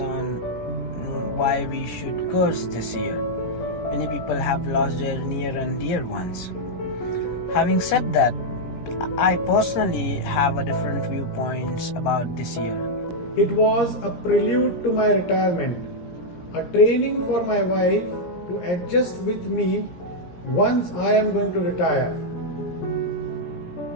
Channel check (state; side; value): late; right; 17 ms